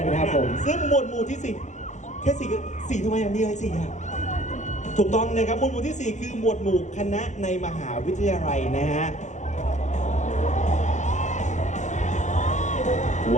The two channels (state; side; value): late; right; 0.35 ms